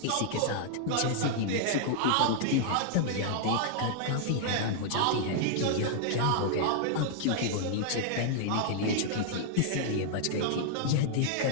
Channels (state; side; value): different; both; correlation -0.01